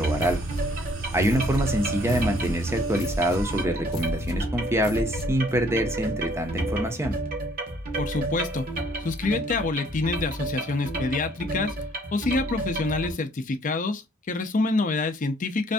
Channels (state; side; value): normal; both; correlation 0.62